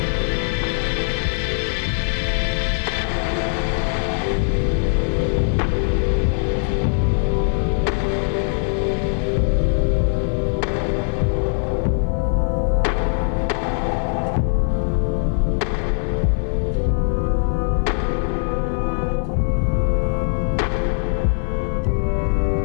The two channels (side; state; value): right; silent; 64 dB below the other